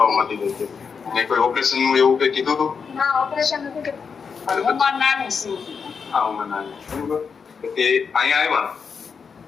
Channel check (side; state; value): right; quieter; 5.9 dB